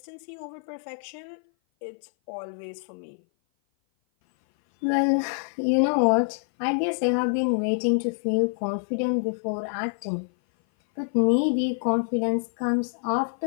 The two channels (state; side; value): silent; right; 57 dB below the other